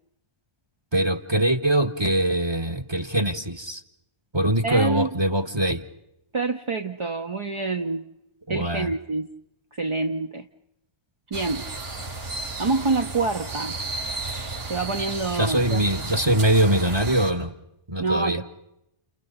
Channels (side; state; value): left; late; 1.2 ms